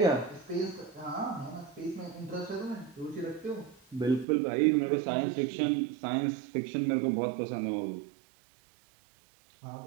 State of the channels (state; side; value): drops out; left; at 4.2 s